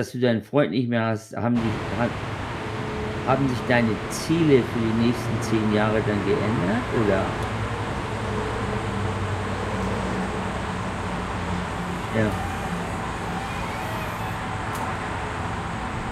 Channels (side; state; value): both; identical; correlation 1.00